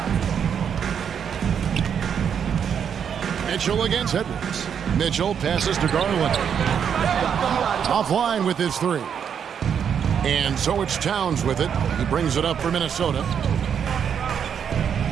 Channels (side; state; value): left; quieter; 7.8 dB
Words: Mitchell against Edwards. Mitchell passes to Garland. Offline with his 3. And so it's Towns with it. He brings it up for Minnesota.